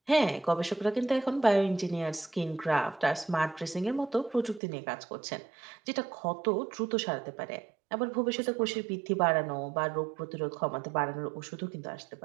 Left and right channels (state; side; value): drops out; left; at 4.6 s